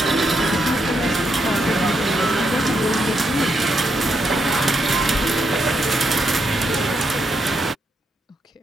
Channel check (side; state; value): both; normal; correlation 0.79